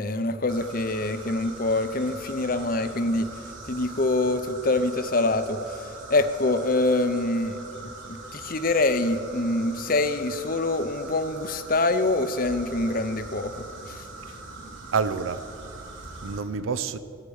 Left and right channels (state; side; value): normal; both; correlation 0.15